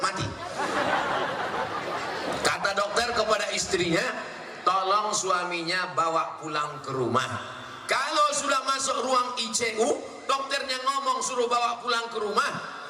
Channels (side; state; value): both; identical; correlation 1.00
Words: mati. Kata dokter kepada istrinya, tolong suaminya bawa pulang ke rumah. Kalau sudah masuk ruang ICU, dokternya ngomong suruh bawa pulang ke rumah,